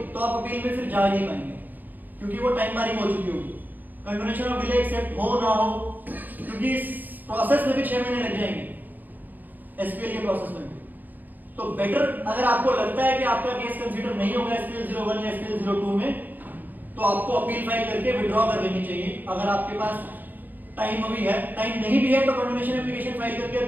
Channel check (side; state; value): left; late; 0.085 ms